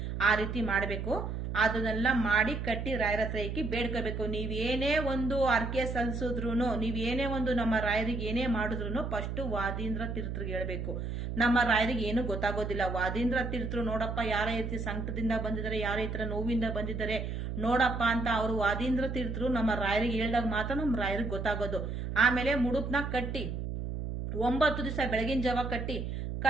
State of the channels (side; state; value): right; noise; hum, 4 dB below the sound